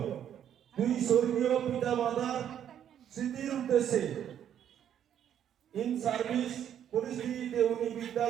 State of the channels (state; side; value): quieter; left; 9.8 dB